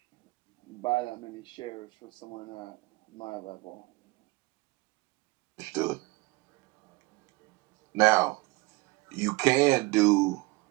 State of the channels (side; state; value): left; quieter; 23.6 dB